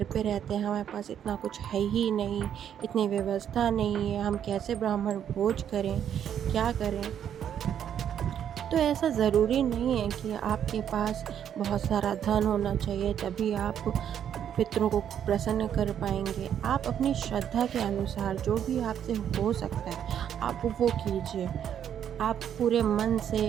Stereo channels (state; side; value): quieter; left; 9.3 dB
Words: पे रहते हैं, हमारे पास इतना कुछ है ही नहीं, इतनी व्यवस्था नहीं है, हम कैसे ब्राह्मण भोज करें, क्या करें। तो ऐसा ज़रूरी नहीं है कि आपके पास बहुत सारा धन होना चाहिए तभी आप पितरों को प्रसन्न कर पाएंगे। आप अपनी श्रद्धा के अनुसार जो भी आपसे हो सकता है आप वो कीजिए। आप पूरे मन से